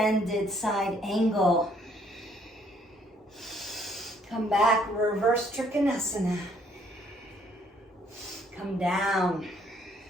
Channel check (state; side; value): normal; both; correlation 0.65